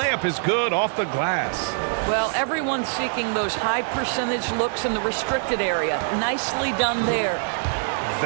is good off the glass. Well, everyone's seeking those high percentage looks in the restricted area. Nicely done there.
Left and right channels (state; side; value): silent; left; digital silence